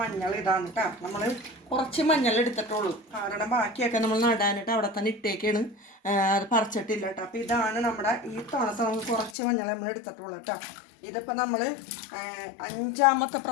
ഇതാണ് കേട്ടോ. നമ്മൾ കുറച്ച് മഞ്ഞൾ എടുത്തിട്ടുള്ളൂ, കാരണം ബാക്കിയൊക്കെ നമ്മൾ നടാനിട്ട് അവിടെ തന്നെ ഇട്ടേക്കാണ്, അത് പറിച്ചിട്ടില്ല കേട്ടോ. അപ്പോൾ ഇതാണ് നമ്മുടെ ഈ തുണത്തെ നമുക്ക് കുറച്ച് മഞ്ഞൾ നമ്മൾ എടുത്തിട്ടുള്ളൂ കേട്ടോ. ഇതിപ്പോൾ നമ്മൾ 5ാമത്തെ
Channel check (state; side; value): drops out; right; at 9.3 s